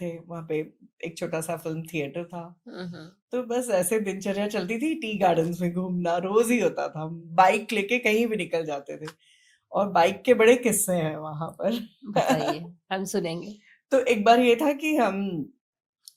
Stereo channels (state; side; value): identical; both; correlation 1.00